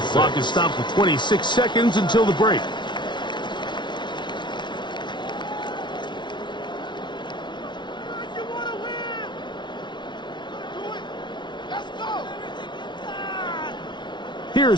Clock is stopped for 26 seconds until the break.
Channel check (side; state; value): right; late; 0.22 ms